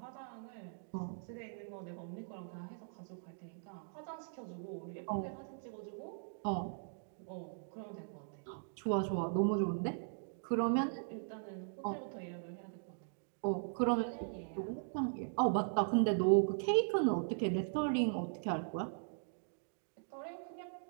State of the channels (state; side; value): silent; left; digital silence